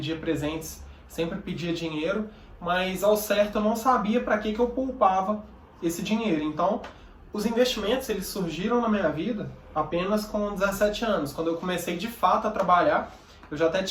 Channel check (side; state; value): both; identical; correlation 1.00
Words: presentes, sempre pedia dinheiro. Mas ao certo eu não sabia para que eu poupava esse dinheiro. Então, os investimentos, eles surgiram na minha vida apenas com 17 anos. Quando eu comecei de fato a trabalhar, eu já até